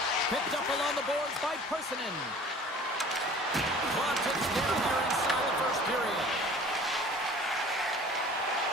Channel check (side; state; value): both; normal; correlation 0.46